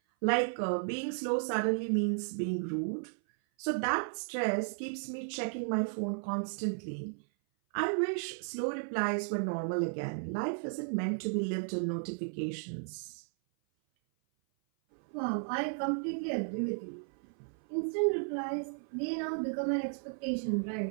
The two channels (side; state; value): left; silent; 55 dB below the other